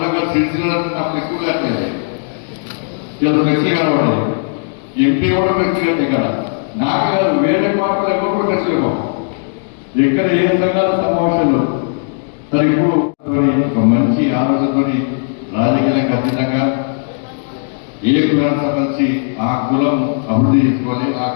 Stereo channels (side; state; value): right; silent; digital silence